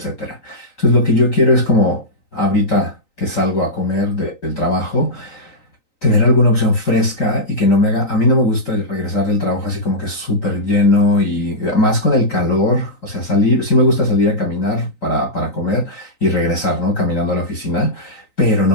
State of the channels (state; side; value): late; right; 3.9 ms